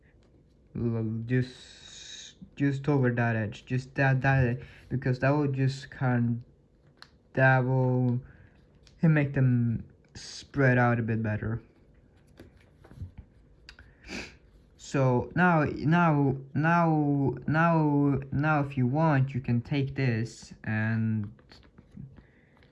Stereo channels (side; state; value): both; identical; correlation 1.00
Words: just over that edge, just that because that will just that will make them spread out a bit better. So now if you want, you can take this and